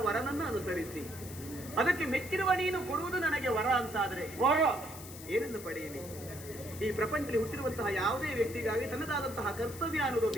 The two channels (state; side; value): noise; left; hiss, 14 dB below the sound